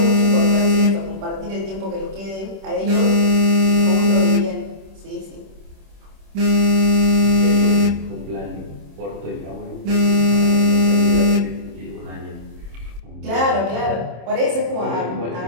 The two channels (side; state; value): left; late; 26 ms